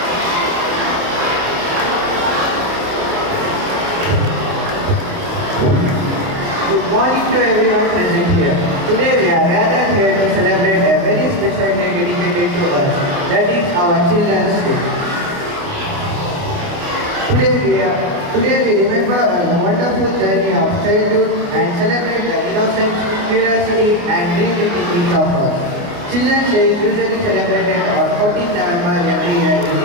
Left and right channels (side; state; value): left; late; 29 ms